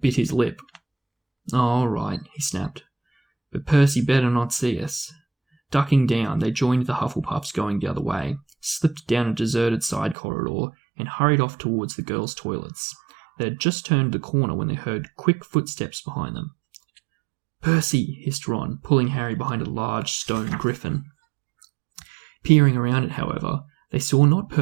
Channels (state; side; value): drops out; left; at 10.2 s